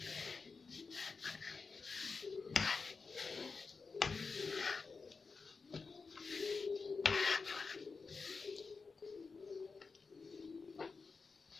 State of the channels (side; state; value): right; quieter; 4.7 dB